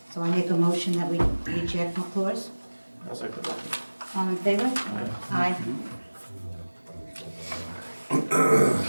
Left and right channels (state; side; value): inverted; both; correlation -1.00